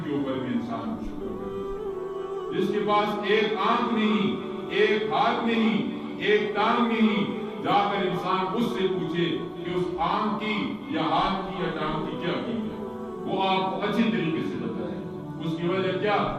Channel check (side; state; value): both; identical; correlation 1.00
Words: کے اوپر بھی انسان کو شکر کرے. جس کے پاس ایک آنکھ نہیں, ایک ہاتھ نہیں, ایک ٹانگ نہیں, جا کر انسان اس سے پوچھے کہ اس آنکھ کی یا ہاتھ کی یا ٹانگ کی کیا قیمت ہے, وہ آپ کو اچھی طریقے سے بتائے. اس کی وجہ کیا